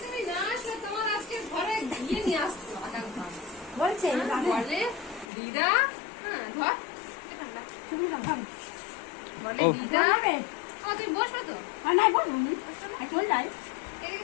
তুমি না আসলে তোমার আজকে ঘরে গিয়ে নিয়ে আসতো বলছে বলে দিদা। হ্যাঁ ধর তুমি না ধরো বলে দিদা। ও তুমি বসবে তো? আর নাই বলুনি চল যাই,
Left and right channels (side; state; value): right; drops out; at 5.2 s